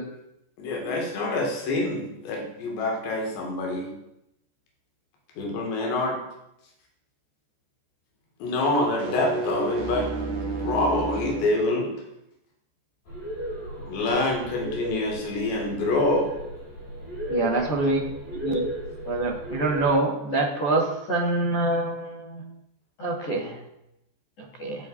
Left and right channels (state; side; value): late; right; 14 ms